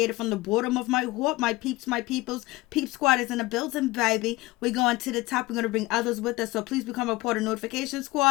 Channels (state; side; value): quieter; right; 20.3 dB